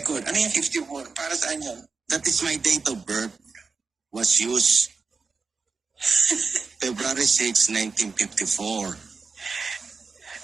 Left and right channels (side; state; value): left; quieter; 4.7 dB